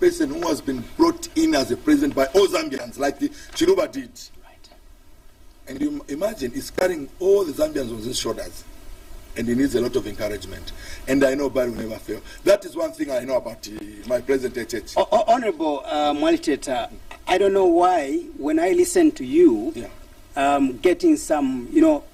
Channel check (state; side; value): identical; both; correlation 1.00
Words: who has been brought in as a president by all Zambians, like Chiluba did. Right. And you imagine, he's carrying all the Zambians on his shoulders. And he needs a lot of encouragement. And I know Barry will never fail. That is one thing I know about my president at church. Honorable Mwaliteta, I don't know why, when I listen to you, getting some,